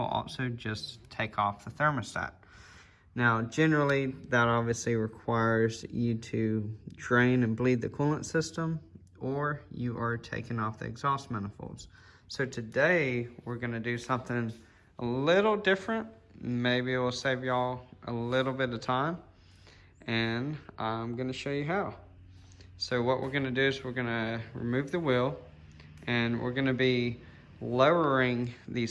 also just take off the thermostat. Now, generally, that obviously requires you to drain and bleed the coolant system, or you are taking off the exhaust manifolds. So today, we're gonna do something a little different. Maybe it will save y'all a little bit of time, and I'm gonna show you how. So what we're gonna do is we're gonna remove the wheel, and we're gonna be lowering the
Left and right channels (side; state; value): both; identical; correlation 1.00